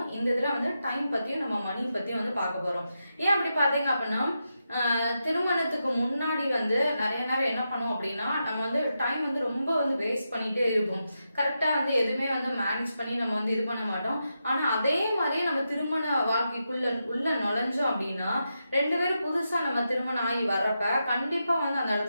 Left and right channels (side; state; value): both; inverted; correlation -0.87